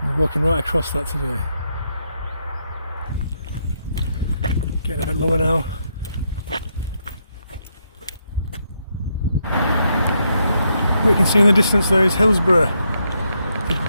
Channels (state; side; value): inverted; both; correlation -0.79